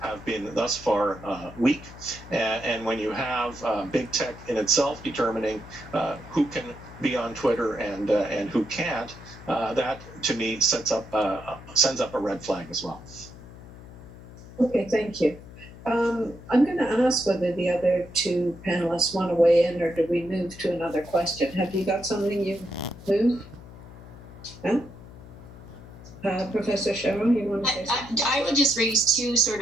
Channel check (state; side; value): noise; left; hum, 17 dB below the sound